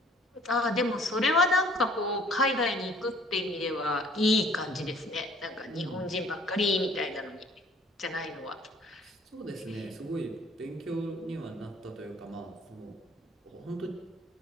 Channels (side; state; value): both; normal; correlation 0.56